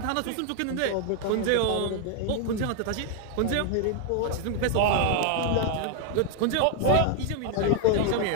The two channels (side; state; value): both; different; correlation 0.00